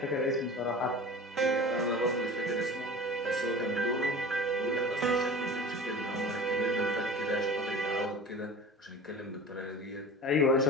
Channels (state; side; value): normal; both; correlation 0.37